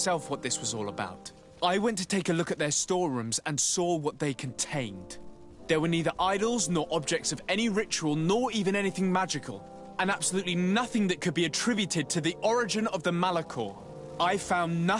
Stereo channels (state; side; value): identical; both; correlation 1.00